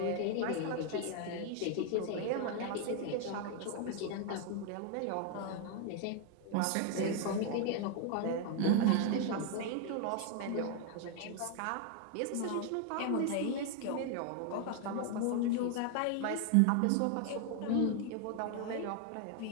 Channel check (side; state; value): both; different; correlation 0.00